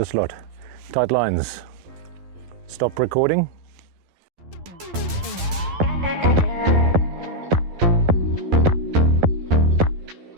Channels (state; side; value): late; left; 11 ms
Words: lot. Tight lines. Stop recording.